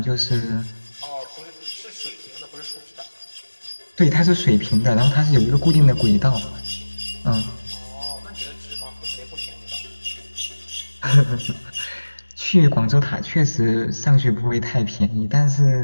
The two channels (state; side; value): inverted; both; correlation -1.00